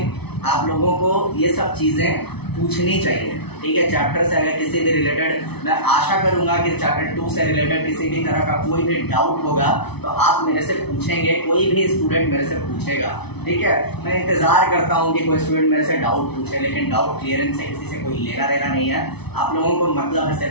आप लोगों को ये सब चीज़ें पूछनी चाहिए, ठीक है। चैप्टर से अगर किसी भी रिलेटेड, मैं आशा करूंगा कि चैप्टर 2 से रिलेटेड किसी भी तरह का कोई भी डाउट होगा तो आप मेरे से पूछेंगे, कोई भी स्टूडेंट मेरे से पूछेगा, ठीक है। मैं इंतज़ार करता हूं कि कोई स्टूडेंट मेरे से डाउट पूछे, लेकिन डाउट क्लियरेंस से किसी से कोई लेना देना नहीं है। आप लोगों को मतलब है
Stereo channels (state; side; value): late; right; 0.98 ms